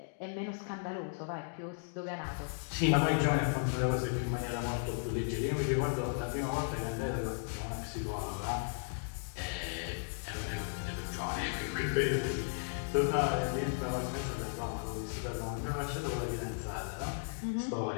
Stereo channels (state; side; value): silent; right; digital silence